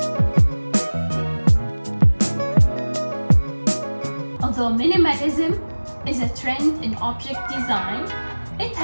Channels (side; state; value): both; inverted; correlation -1.00